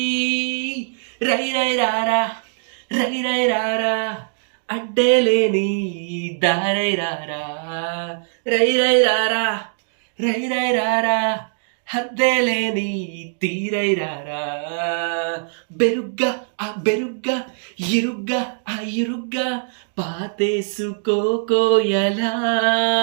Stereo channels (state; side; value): silent; left; digital silence